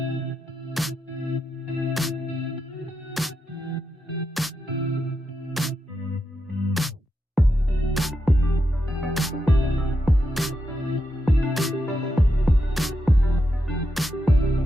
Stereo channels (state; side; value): normal; both; correlation 0.85